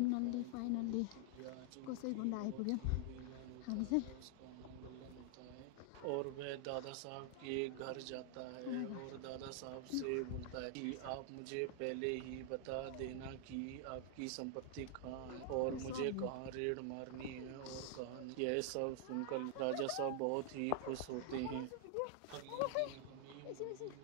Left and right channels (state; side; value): different; both; correlation 0.00